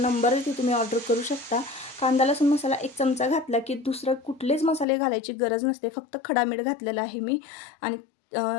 आहे, ते तुम्ही ऑर्डर करू शकता. कांदा लसूण मसाला 1 चमचा घातला की दुसरं कुठलेच मसाले घालायची गरज नसते. फक्त खडा मीठ घातलेला आहे मी. आणि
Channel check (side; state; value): right; drops out; at 4.9 s